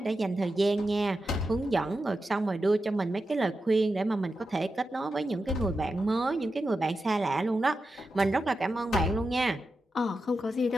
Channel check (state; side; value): normal; both; correlation 0.90